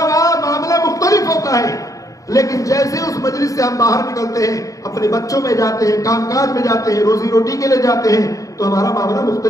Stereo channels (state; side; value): late; right; 0.16 ms